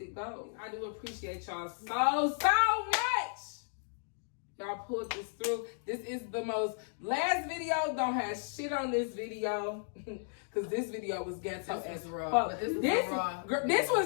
goals. I do appreciate y'all so much. Y'all pulled this through. This is the most. Last video don't have shit on this video. Because this video was ghetto as raw. fuck. This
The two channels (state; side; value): silent; right; digital silence